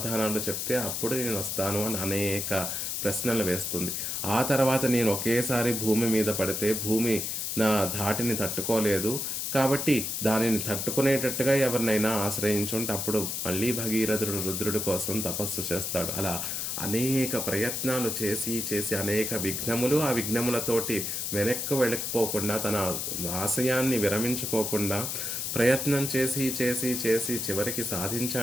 చెప్తే అప్పుడు నేను వస్తాను అని అనేక ప్రశ్నలు వేస్తుంది. ఆ తర్వాత నేను ఒకేసారి భూమి మీద పడితే భూమి నా ధాటిని తట్టుకోలేదు, కాబట్టి దానిని తట్టుకునేటట్టుగా ఎవరినైనా ఆశ్రయించుంటే అప్పుడు మళ్ళీ భగీరథుడు రుద్రుడి కోసం తపస్సు చేస్తాడు. అలా అనేక ప్రయత్నాలు చేసి చేసి అనేక విఘ్నములు, ఆ విఘ్నములతోటి వెనక్కు వెళ్ళకపోకుండా తన ఆశయాన్ని విరమించుకోకుండా ప్రయత్నం చేసి చేసి చేసి చివరికి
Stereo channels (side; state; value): left; noise; hiss, 2 dB below the sound